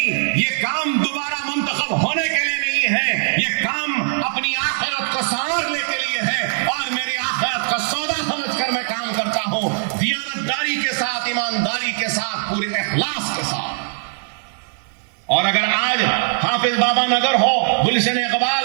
یہ کام دوبارہ منتخب ہونے کے لیے نہیں ہے، یہ کام اپنی آخرت کو سنوارنے کے لیے ہے، اور میری آخرت کا سودا سمجھ کر میں کام کرتا ہوں، دیانتداری کے ساتھ، ایمانداری کے ساتھ، پورے اخلاص کے ساتھ۔ اور اگر آج حافظ بابا نگر ہو، گلشن اقبال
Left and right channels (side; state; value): left; silent; 65 dB below the other